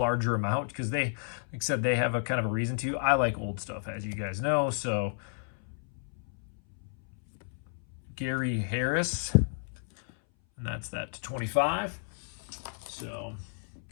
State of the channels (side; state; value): right; silent; 57 dB below the other